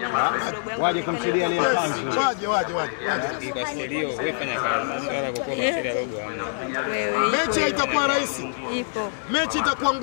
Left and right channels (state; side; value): silent; right; digital silence